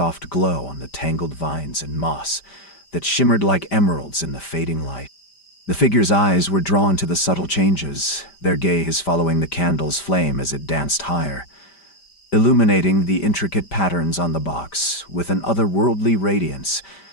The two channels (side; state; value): right; late; 5.1 ms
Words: glow on the tangled vines and moss that shimmered like emeralds in the fading light. The figure's eyes were drawn to the subtle changes, their gaze following the candle's flame as it danced higher, illuminating the intricate patterns on the box with an otherworldly radiance,